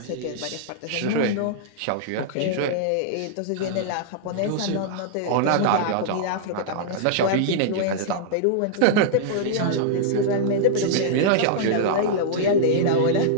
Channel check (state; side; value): different; both; correlation -0.02